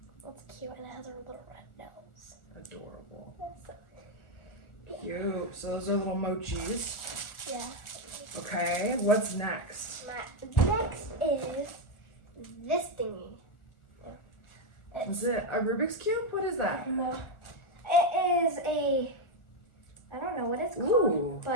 It's cute and it has a little red nose. Adorable. So, yeah. Cute. So those are little mochis. Yeah. Okay, what's next? Next is this thingy. Is it a Rubik's Cube? What is that? No. It is I don't know what it's called,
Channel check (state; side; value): late; right; 1.4 ms